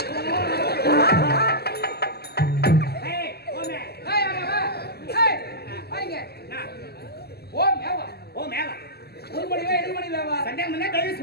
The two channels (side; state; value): right; late; 0.46 ms